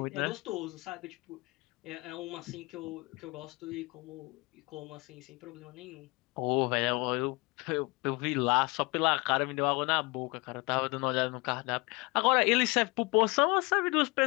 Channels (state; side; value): quieter; right; 25.6 dB